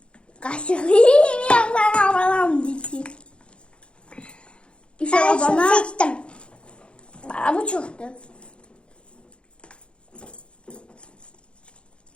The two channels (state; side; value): late; right; 0.057 ms